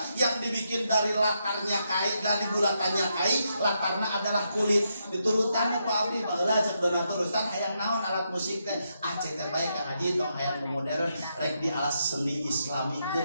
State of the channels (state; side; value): inverted; both; correlation -0.81